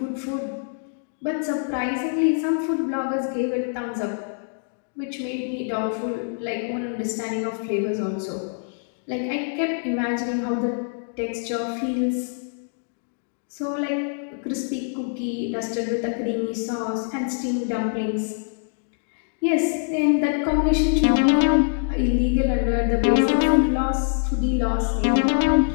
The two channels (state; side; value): silent; right; digital silence